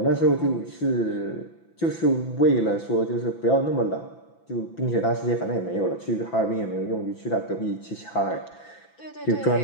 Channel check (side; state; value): right; late; 6.0 ms